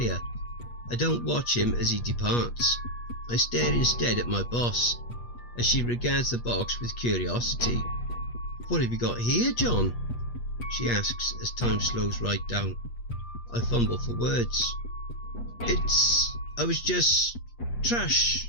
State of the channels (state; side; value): late; right; 8.4 ms